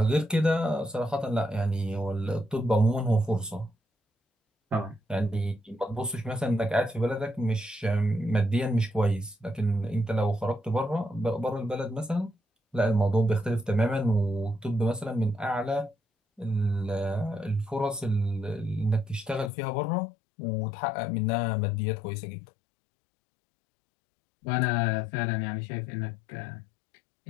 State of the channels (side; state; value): right; drops out; at 19.5 s